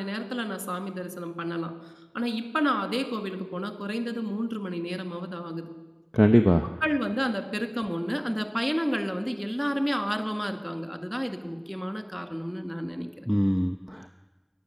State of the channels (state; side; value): identical; both; correlation 1.00